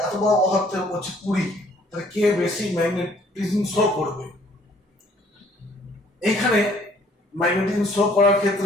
এত বড় পদার্থের হচ্ছে 20, তাহলে কে বেশি ম্যাগনেটিজম শো করবে? এইখানে ম্যাগনেটিজম শো করার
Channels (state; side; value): normal; both; correlation 0.60